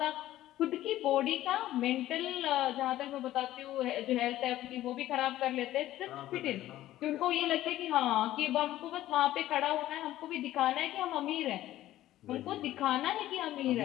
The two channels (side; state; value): right; quieter; 14.3 dB